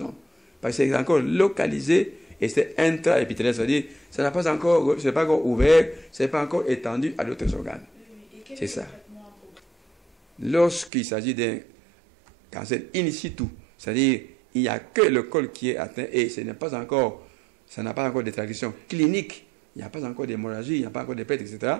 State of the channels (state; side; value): drops out; left; at 10.9 s